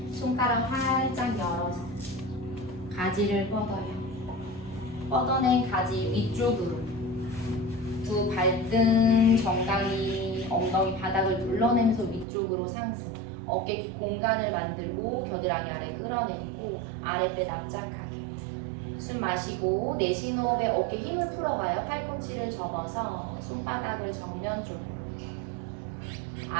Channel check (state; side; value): drops out; left; at 12.2 s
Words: 손가락 활짝 열어서 가지를 뻗어요. 뻗어낸 가지 위쪽으로 두 발등 정강이 엉덩이 바닥을 눌러내면서 위쪽으로 상승. 어깨 뒤 공간을 만들고 겨드랑이 아래 끌어내리고 아랫배 납작하게. 숨 마시고 내쉬는 호흡에 어깨 힘을 풀어가요. 팔꿈치를 접어서 손바닥을 정면 쪽으로